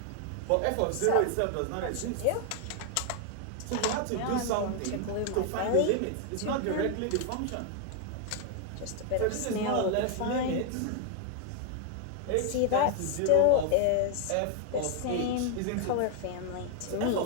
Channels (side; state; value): both; different; correlation 0.00